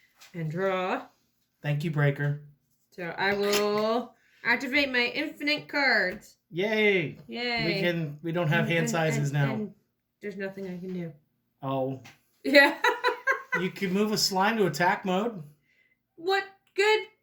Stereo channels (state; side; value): identical; both; correlation 1.00